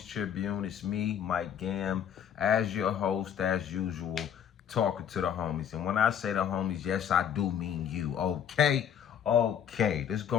Tribune. It's me, Mike Gam, as your host, as usual, talking to the homies. And when I say the homies, yes, I do mean you. Okay? Okay. Let's go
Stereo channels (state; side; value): quieter; right; 8.8 dB